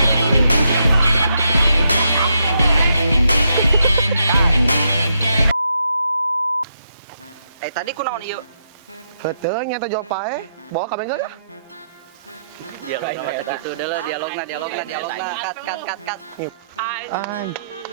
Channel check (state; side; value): inverted; both; correlation -0.79